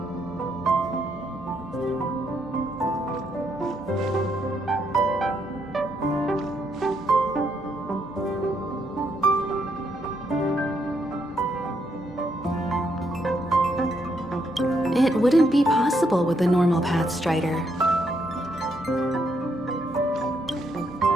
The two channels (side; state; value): both; normal; correlation 0.76